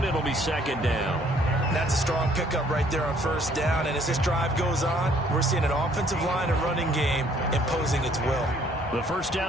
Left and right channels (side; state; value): both; normal; correlation 0.62